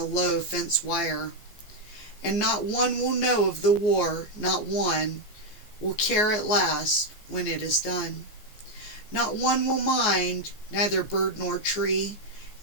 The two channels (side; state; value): right; late; 14 ms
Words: low fence wire. And not one will know of the war, not one will care at last when it is done. Not one will mind, neither bird nor tree,